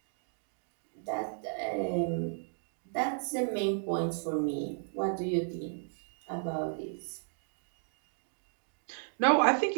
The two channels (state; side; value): silent; left; digital silence